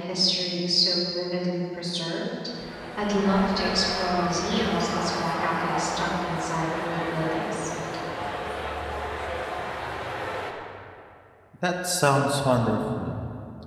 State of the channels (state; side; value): identical; both; correlation 1.00